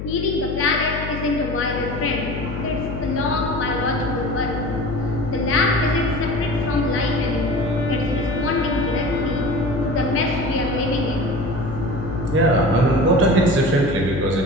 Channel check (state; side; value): noise; left; hum, 6 dB below the sound